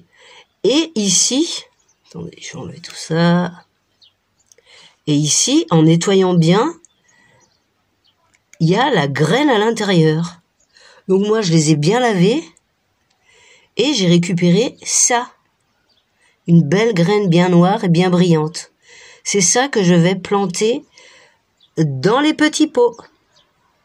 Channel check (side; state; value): both; identical; correlation 1.00